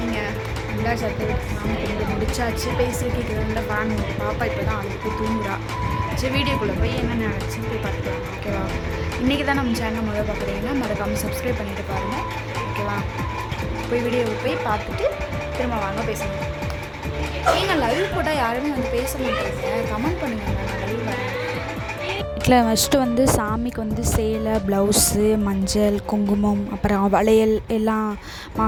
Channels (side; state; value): both; identical; correlation 1.00